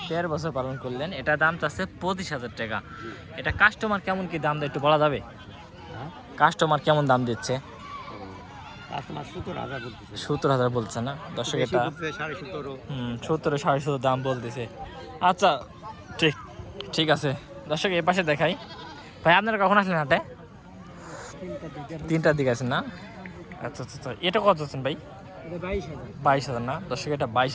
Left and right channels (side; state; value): both; identical; correlation 1.00